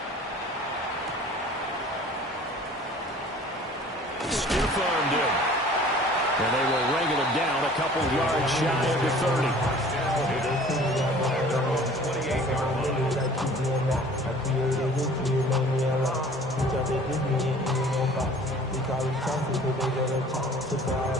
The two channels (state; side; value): normal; both; correlation 0.48